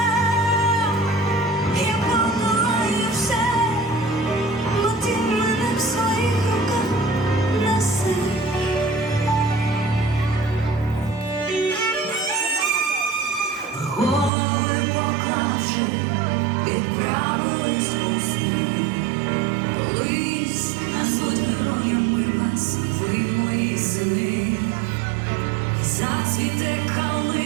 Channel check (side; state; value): left; drops out; at 14.3 s